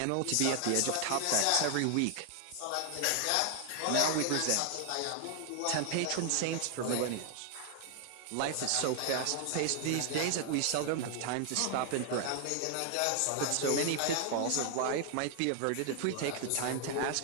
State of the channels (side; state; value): both; different; correlation 0.00